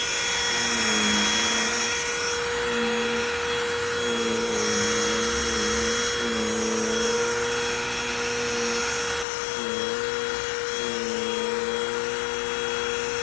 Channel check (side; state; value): right; drops out; at 9.2 s